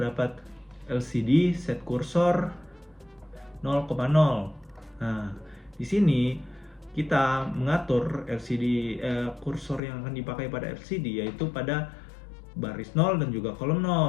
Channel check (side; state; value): right; drops out; at 9.8 s